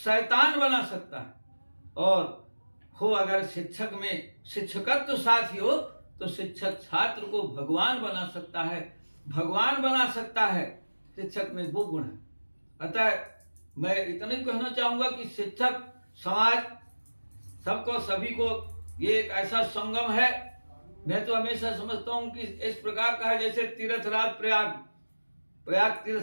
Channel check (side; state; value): both; inverted; correlation -1.00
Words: बना सकता है, और हो अगर शिक्षक में शिक्षकत्व साथ ही हो तो शिक्षक छात्र को भगवान बना सकता है, भगवान बना सकता है। शिक्षक में वो गुण है। अतः मैं इतना ही कहना चाहूंगा कि शिक्षक समाज सबको सभी को ये एक ऐसा संगम है। मैं तो हमेशा समझता हूं कि इस प्रकार का है जैसे तीर्थराज प्रयाग